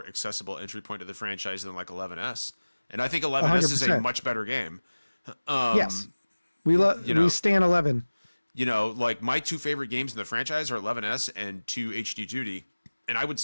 accessible entry point to the franchise than like 11S, and I think 11S is a 100%. much better game. Yes. We know- we stand 11. Like my two favorite games in the franchise are 11S and 2 HD Duty, and I would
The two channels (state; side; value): inverted; both; correlation -1.00